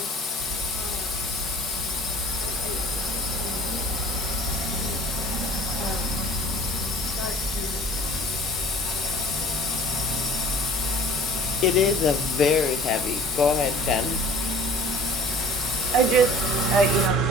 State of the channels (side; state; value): both; normal; correlation 0.47